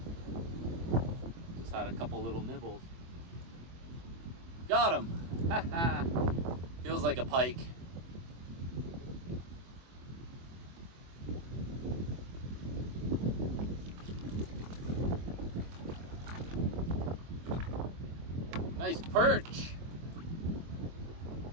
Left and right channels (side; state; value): left; late; 24 ms